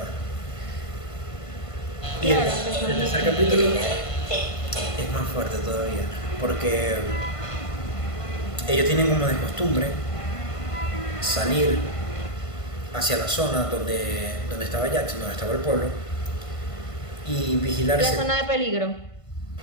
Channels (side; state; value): right; late; 1.5 ms